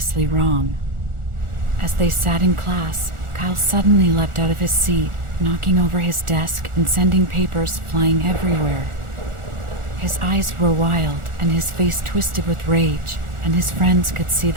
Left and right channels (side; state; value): left; late; 1.4 ms